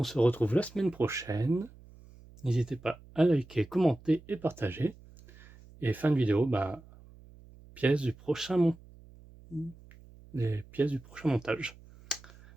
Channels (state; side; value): noise; right; hum, 22 dB below the sound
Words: se retrouve la semaine prochaine. N'hésitez pas à liker, commenter et partager. Et fin de vidéo, bah, les pièces du prochain montage.